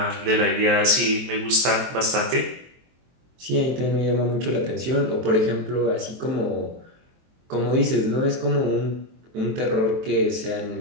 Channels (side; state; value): left; late; 23 ms